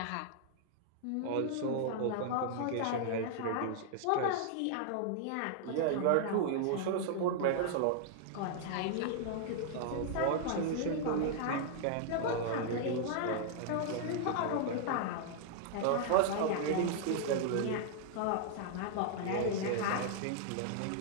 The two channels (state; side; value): different; both; correlation -0.01